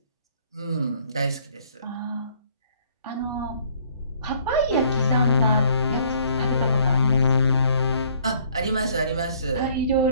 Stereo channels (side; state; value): both; inverted; correlation -0.60